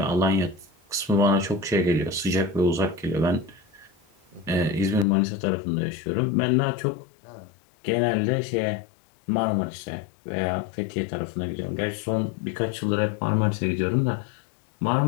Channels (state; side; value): drops out; right; at 5.1 s